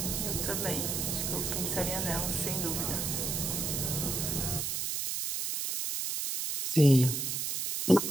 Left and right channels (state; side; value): noise; right; hiss, 1 dB below the sound